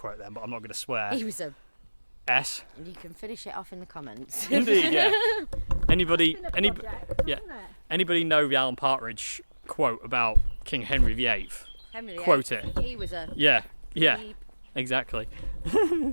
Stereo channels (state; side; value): inverted; both; correlation -1.00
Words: then, but I'm not going to swear. He was a. S. And you can finish it off in the comments. Indeed, yeah. Anybody, Been a any, project, yeah. hasn't it? anybody know the Alan Partridge quote about King Henry VIII? Henry VIII, Quote it. He was a. Yeah, yeah, Beep. exactly.